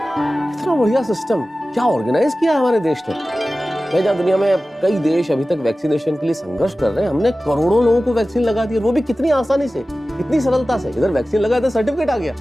इतना बढ़िया सिस्टम क्या ऑर्गेनाइज किया है हमारे देश ने। मैं जहाँ दुनिया में कई देश अभी तक वैक्सीनेशन के लिए संघर्ष कर रहे हैं, हमने करोड़ों लोगों को वैक्सीन लगा दी, वो भी कितनी आसानी से, कितनी सरलता से। इधर वैक्सीन लगा तो सर्टिफिकेट आ गया।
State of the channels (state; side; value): normal; both; correlation 0.96